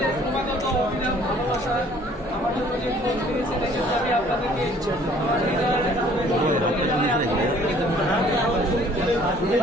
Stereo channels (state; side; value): normal; both; correlation 0.56